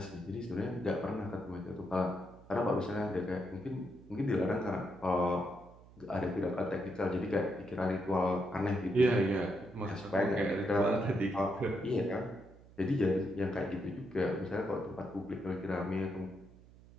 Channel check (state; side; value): noise; right; hum, 22 dB below the sound